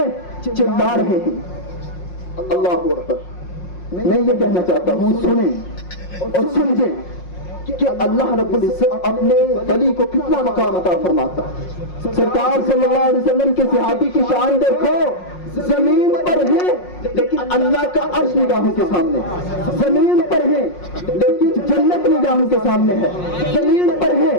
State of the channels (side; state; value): right; late; 5.6 ms